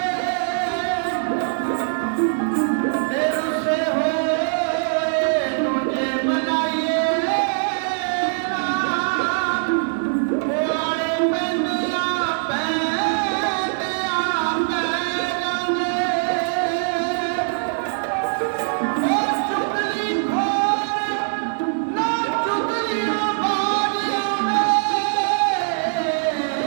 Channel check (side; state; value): left; silent; digital silence